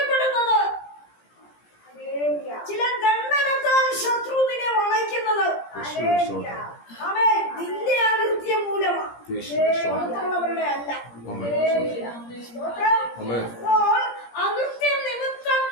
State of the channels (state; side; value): late; right; 17 ms